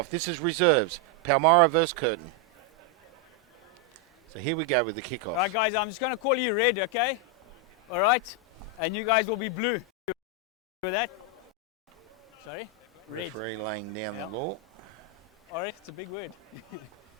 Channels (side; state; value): both; normal; correlation 0.01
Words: This is reserves. Palmyra versus Curtin. So here we go with the kickoff. All right, guys, I'm just going to call you red, okay? All right? And you guys will be blue. With that? Sorry? Red. Referee laying down the law. All right, it's a big word.